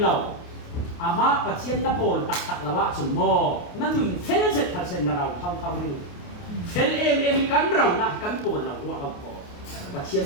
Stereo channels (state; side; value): late; right; 28 ms